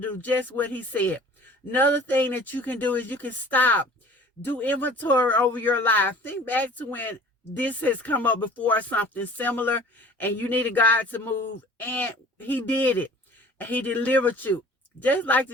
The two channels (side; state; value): both; normal; correlation 0.46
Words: just what he said. Another thing that you can do is you can stop. Do inventory over your life. Think back to when this has come up before, something similar, and you needed God to move, and he did it. And he delivered you. Just like